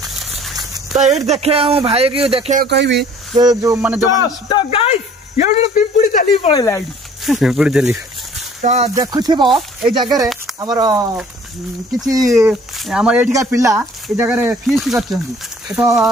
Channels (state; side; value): normal; both; correlation 0.53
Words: तो ये देखे भाई की देखे कहबी जो माने जो तो गाइस ये पिंपुड़ी चली पड़ेला पिंपुड़ी चली तो देखुथिबो ए जगह हमर किछि हमर एठिका पिला ए जगह फीस्ट करछन्ती तो